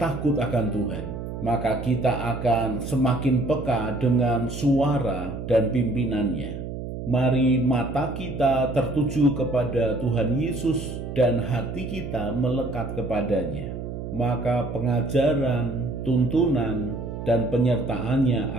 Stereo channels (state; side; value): noise; right; hum, 7 dB below the sound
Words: akan Tuhan, maka kita akan semakin peka dengan suara dan pimpinannya. Mari mata kita tertuju kepada Tuhan Yesus dan hati kita melekat kepadanya. Maka pengajaran, tuntunan, dan penyertaannya